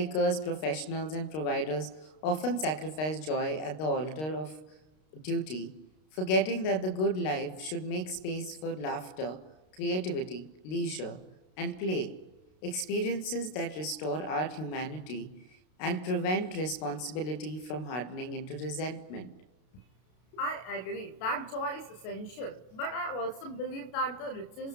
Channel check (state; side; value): late; right; 32 ms